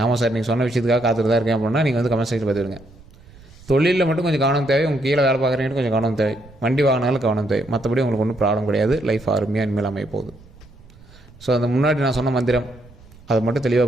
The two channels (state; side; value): noise; right; rumble, 23 dB below the sound